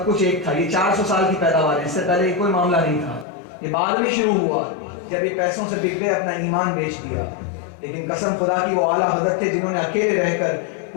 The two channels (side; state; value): right; drops out; at 3.2 s